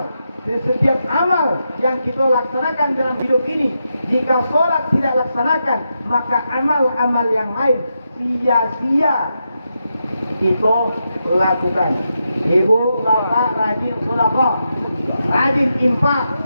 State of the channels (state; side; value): inverted; both; correlation -0.85